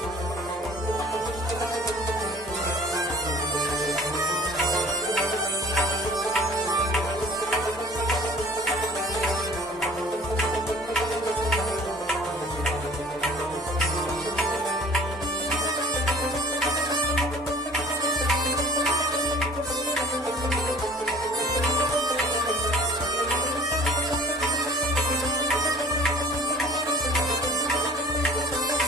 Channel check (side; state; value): both; normal; correlation 0.48